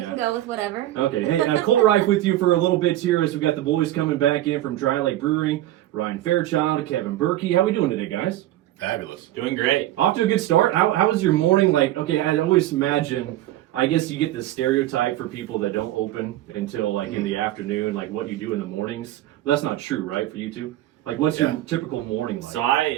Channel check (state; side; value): quieter; left; 14.4 dB